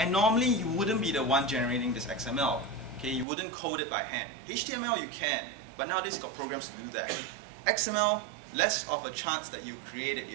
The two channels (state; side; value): drops out; left; at 3.2 s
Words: normally you wouldn't be the one generating this XML. Okay, you wouldn't code it by hand. HTML you can, but nowadays you've got programs to do that. XML, less of a chance that you create it